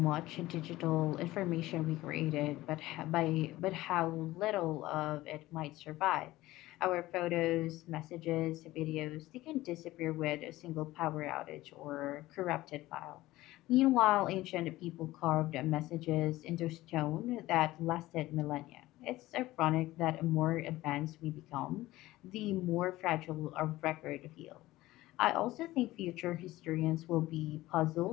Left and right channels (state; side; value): quieter; right; 17.3 dB